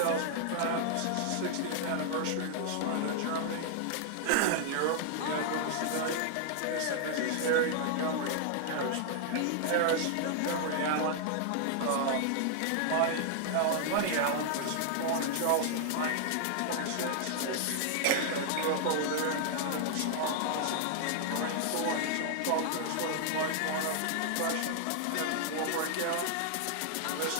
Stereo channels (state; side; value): different; both; correlation 0.00